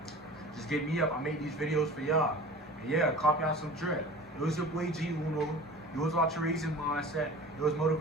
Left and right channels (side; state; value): both; normal; correlation 0.39